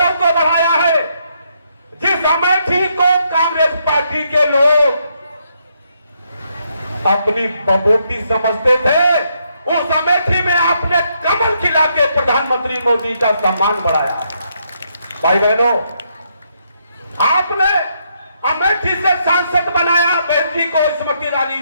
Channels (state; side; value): inverted; both; correlation -0.76